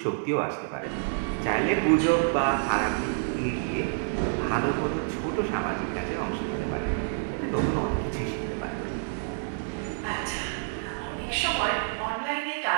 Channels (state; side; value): silent; left; digital silence